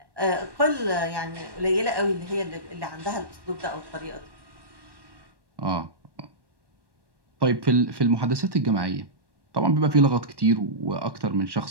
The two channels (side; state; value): left; late; 1.1 ms